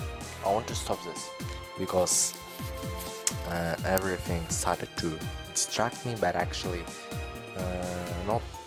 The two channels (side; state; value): both; identical; correlation 1.00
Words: I want to stop this because everything started to distract me, but actually not